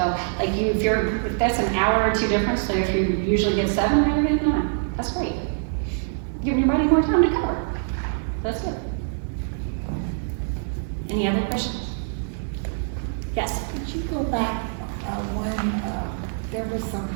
like if that's an hour or two difference, so if you usually get 7, now you're getting 9. That's great. Giving your body more time to cover. That's it. Any other questions? Yes. Could you go back when there were some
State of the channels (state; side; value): silent; left; 55 dB below the other